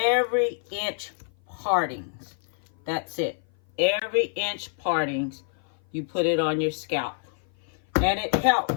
inch partings. That's it. Every inch partings, you put it on your scalp. And it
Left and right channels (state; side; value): silent; right; 56 dB below the other